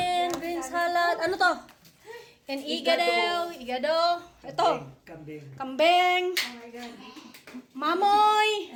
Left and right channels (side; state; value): both; identical; correlation 1.00